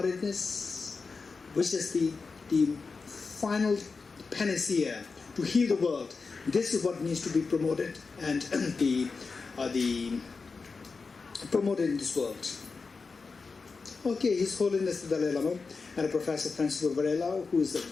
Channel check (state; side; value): quieter; right; 4.5 dB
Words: which is the final panacea to heal the world. This is what needs to be promoted and promoted in this world. Okay, His Holiness the Dalai Lama and Professor Francisco Varela, who is a